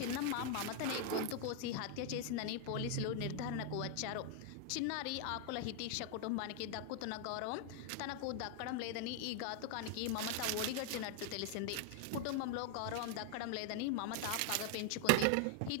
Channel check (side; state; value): both; different; correlation 0.00